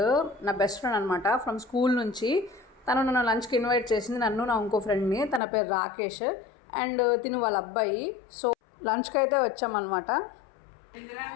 నా బెస్ట్ ఫ్రెండ్ అనమాట, ఫ్రమ్ స్కూల్ నుంచి. తను నన్ను లంచ్కి ఇన్వైట్ చేసింది, నన్ను నా ఇంకో ఫ్రెండ్ని. తన పేరు రాకేష్ అండ్ తిను వాళ్ళ అబ్బాయి. సో లంచ్కి అయితే వచ్చామన్నమాట.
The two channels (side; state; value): right; drops out; at 5.4 s